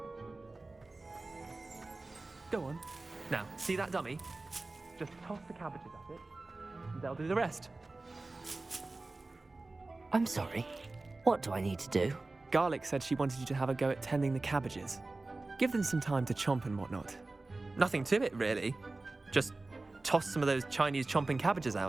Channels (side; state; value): left; quieter; 3.2 dB